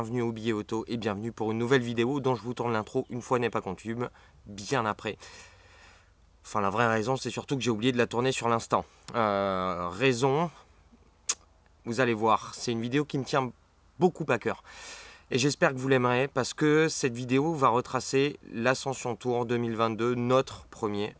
au Billet Auto et bienvenue pour une nouvelle vidéo dont je vous tourne l'intro une fois n'est pas coutume, bien après. Enfin la vraie raison c'est surtout que j'ai oublié de la tourner sur l'instant. Raison, vous allez voir, c'est une vidéo qui me tient beaucoup à cœur. Et j'espère que vous l'aimerez parce que cette vidéo va retracer l'Ascension Tour 2022, notre premier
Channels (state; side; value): identical; both; correlation 1.00